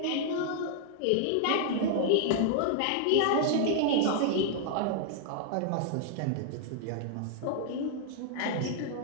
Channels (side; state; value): both; different; correlation 0.00